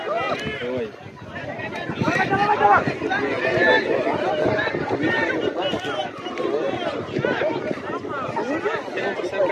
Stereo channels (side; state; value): both; identical; correlation 1.00